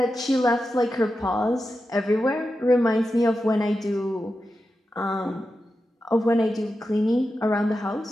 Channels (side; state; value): both; normal; correlation 0.90